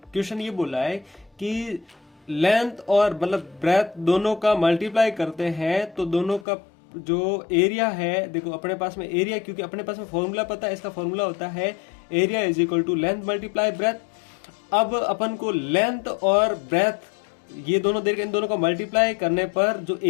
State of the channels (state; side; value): drops out; right; at 6.5 s